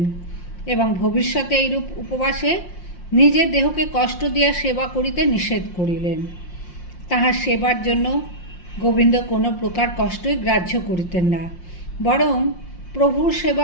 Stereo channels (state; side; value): late; right; 5.6 ms